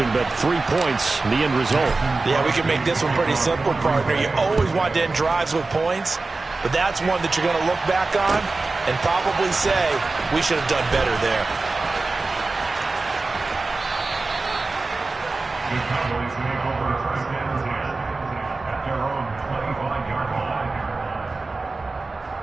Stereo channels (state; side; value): quieter; left; 3.6 dB